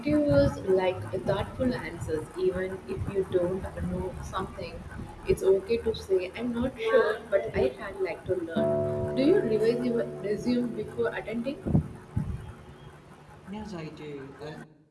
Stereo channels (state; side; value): identical; both; correlation 1.00